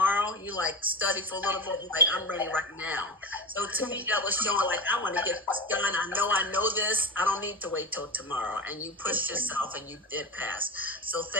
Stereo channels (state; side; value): normal; both; correlation 0.26